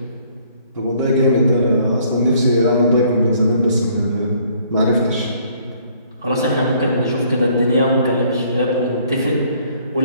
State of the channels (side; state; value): both; inverted; correlation -0.62